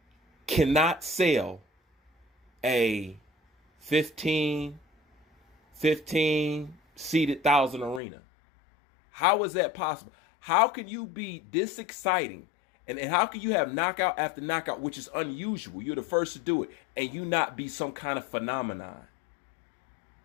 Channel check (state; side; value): drops out; right; at 8.0 s